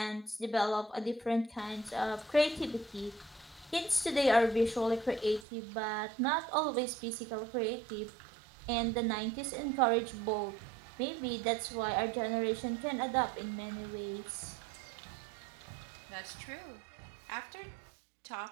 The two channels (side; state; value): left; drops out; at 5.5 s